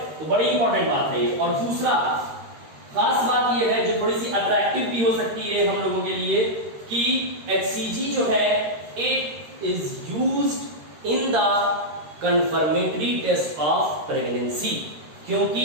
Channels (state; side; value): late; left; 13 ms